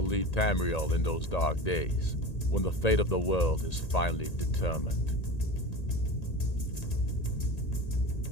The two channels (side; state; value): right; late; 1.8 ms